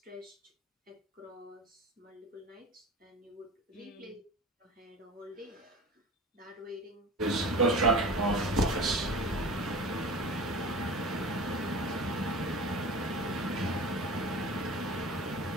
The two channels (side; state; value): both; normal; correlation 0.36